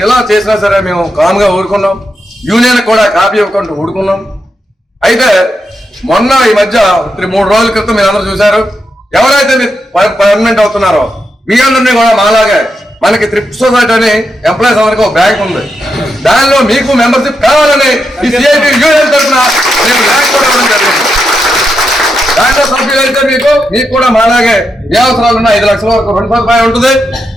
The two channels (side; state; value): both; normal; correlation 0.84